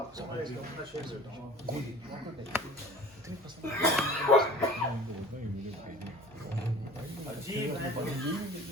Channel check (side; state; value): left; noise; hum, 28 dB below the sound